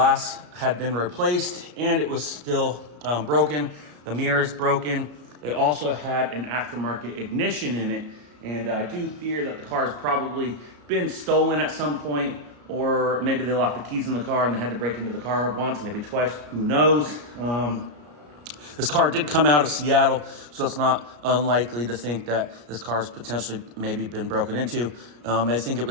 had been replaced, and it was still broken. The mirror is broken. It also had an aftermarket ignition in it, and I do fear that the car has probably been stolen at some point, or maybe they locked the keys in the car and they had to break into the car once, maybe twice, who knows. This car did come out of Seattle, so it's not unlikely to think that this car's potentially maybe been broken into. I think it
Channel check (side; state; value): left; late; 34 ms